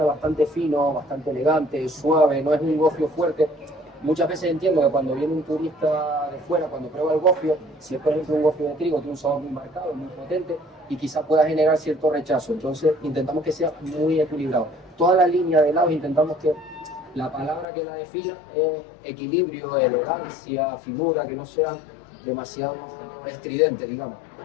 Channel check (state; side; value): drops out; right; at 17.7 s